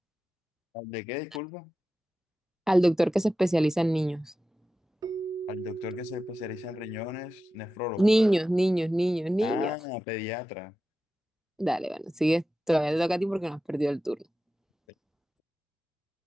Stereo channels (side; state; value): both; normal; correlation 0.93